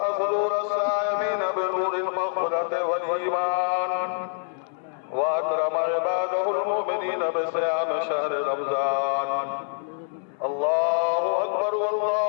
صدور السائمين بنور المغفرة والإيمان، وأكرم عباده المؤمنين بصيام شهر رمضان. الله أكبر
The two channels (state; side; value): silent; right; 59 dB below the other